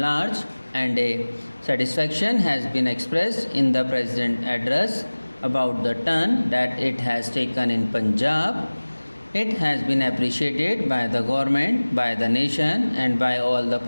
and a satisfaction has been expressed in the President address about the turn that it has taken in Punjab. It has been appreciated by the government, by the nation and by all the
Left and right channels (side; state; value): both; inverted; correlation -1.00